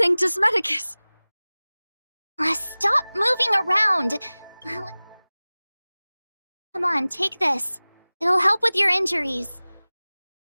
Medicus. Stop moving around! Come on, take this. It'll help with your injuries.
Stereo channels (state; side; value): inverted; both; correlation -0.99